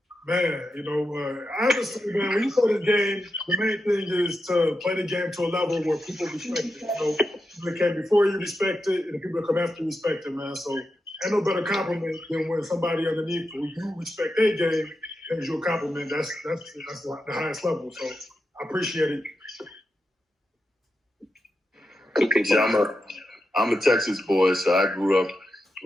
Man, honestly, man, when you play the game, the main thing is to play the game to a level where people respect it. People that came before you respect it, and the people that come after you respect it, man. So ain't no better compliment than when somebody underneath you respect their game gives you a compliment. That's the highest level. So I appreciate it. I'm a Texas boy, so I grew up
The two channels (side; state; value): both; normal; correlation 0.88